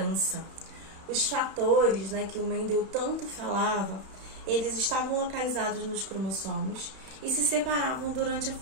Os fatores, que o Mendel tanto falava, eles estavam localizados nos cromossomos e se separavam durante a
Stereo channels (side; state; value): left; late; 31 ms